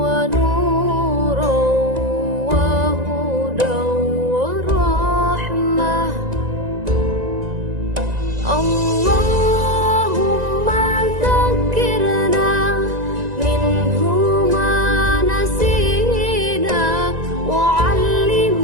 ونورا وهدى ورحمة اللهم ذكرنا منه ما نسينا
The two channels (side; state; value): left; late; 1.9 ms